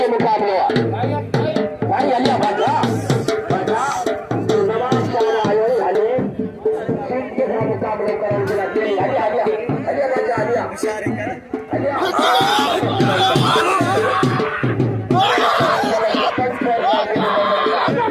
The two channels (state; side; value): identical; both; correlation 1.00